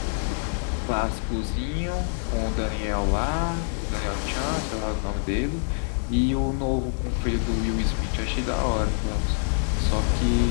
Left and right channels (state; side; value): silent; right; 59 dB below the other